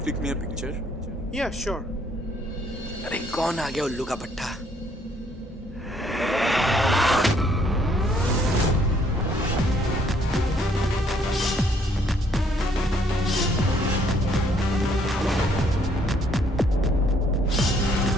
click me a picture? Yeah, sure. अरे कौन आ गया उल्लू का पट्टा?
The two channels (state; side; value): normal; both; correlation 0.66